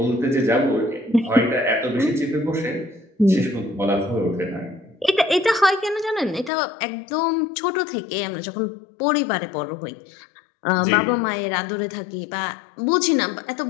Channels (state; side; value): drops out; right; at 6.5 s